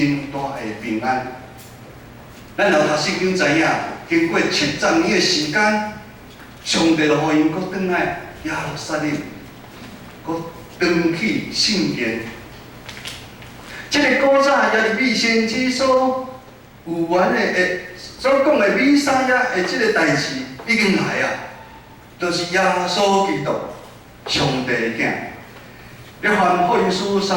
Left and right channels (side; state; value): both; identical; correlation 1.00